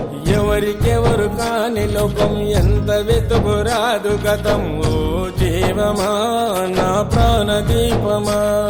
ఎవరికెవరు కాని లోకం, ఎంత వెతుకురాదు గతం. ఓ జీవమా నా ప్రాణదీపమా,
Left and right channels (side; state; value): both; identical; correlation 1.00